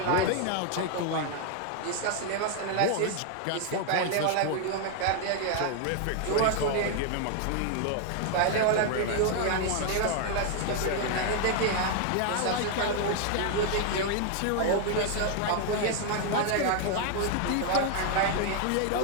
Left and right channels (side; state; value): both; different; correlation 0.00